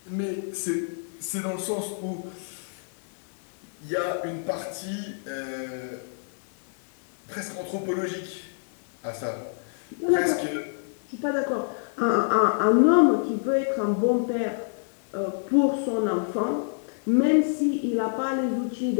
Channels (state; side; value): silent; right; digital silence